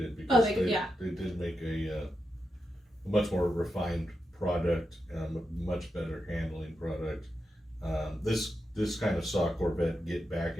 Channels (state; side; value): normal; both; correlation 0.87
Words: because they did make a much more refined product, a much better handling product. This kind of saw Corvette get back